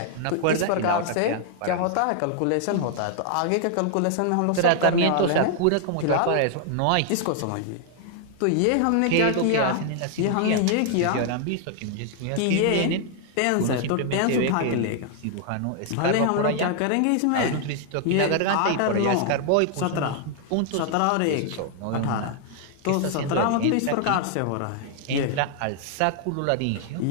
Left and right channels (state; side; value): different; both; correlation 0.00